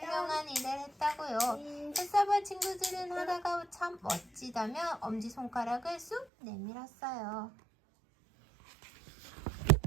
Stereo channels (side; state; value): left; drops out; at 6.2 s